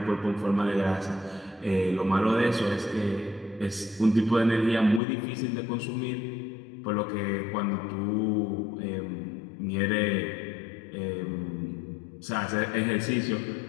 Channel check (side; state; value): right; drops out; at 5.0 s